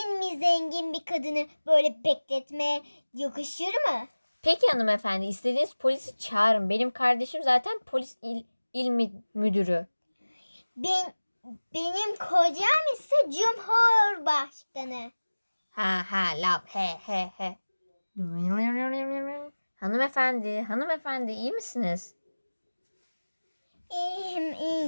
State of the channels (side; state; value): both; inverted; correlation -1.00